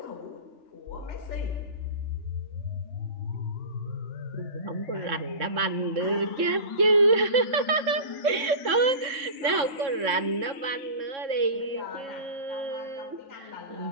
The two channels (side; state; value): left; late; 3.6 ms